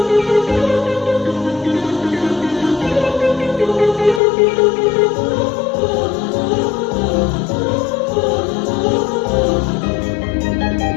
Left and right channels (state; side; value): drops out; right; at 4.2 s